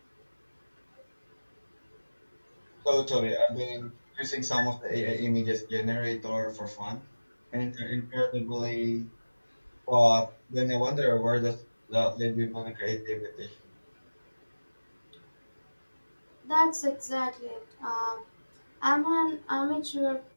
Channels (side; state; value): both; inverted; correlation -1.00